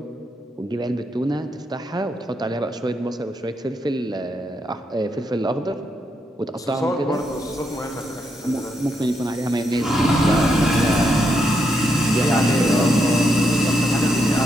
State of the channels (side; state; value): both; normal; correlation 0.80